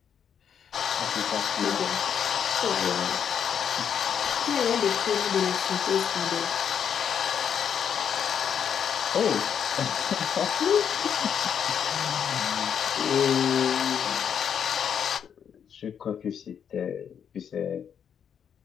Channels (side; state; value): right; quieter; 8.1 dB